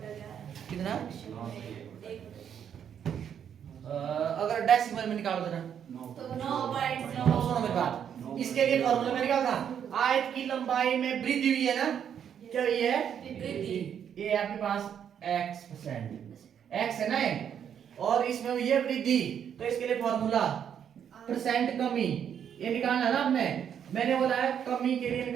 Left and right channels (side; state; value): left; quieter; 8.6 dB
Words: 11 कितना? 9 से 1 अगर डेसिमल में निकालो देना तो 9.9। सुनो मेरी बात, इसके लिए फॉर्मूला में निकाल था आयत की लंबाई में वृद्धि हुई है ना, क्या हुई है? वृद्धि। ये आपके पास x% x है ना ये, और इसमें हुई है वृद्धि, तो इसके लिए फॉर्मूला परसेंट कमी ये निकालना है ना आपने। मैंने बोला है कमी के लिए